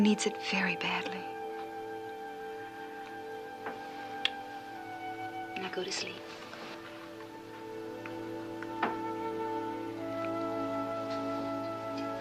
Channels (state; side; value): identical; both; correlation 1.00